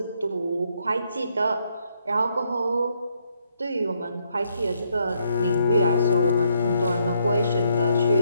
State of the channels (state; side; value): inverted; both; correlation -0.74